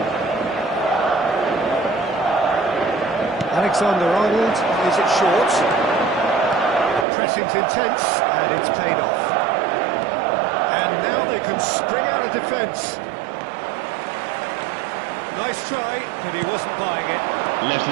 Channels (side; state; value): left; drops out; at 7.1 s